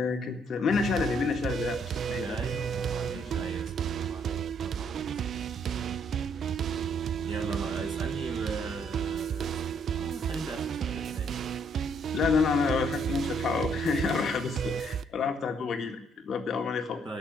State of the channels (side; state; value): both; normal; correlation 0.68